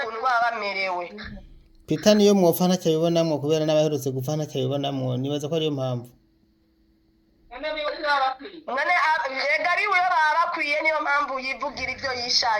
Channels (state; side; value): identical; both; correlation 1.00